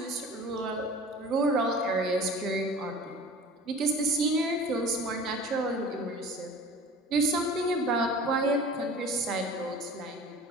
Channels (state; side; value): normal; both; correlation 0.42